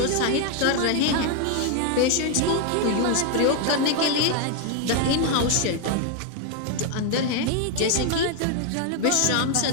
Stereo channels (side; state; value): both; different; correlation 0.01